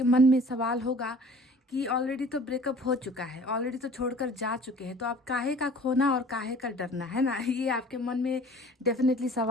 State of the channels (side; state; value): both; normal; correlation 0.48